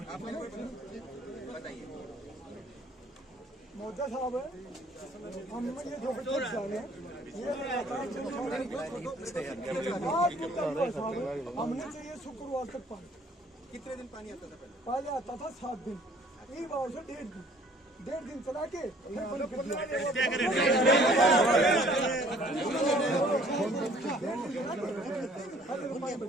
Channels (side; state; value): both; normal; correlation 0.57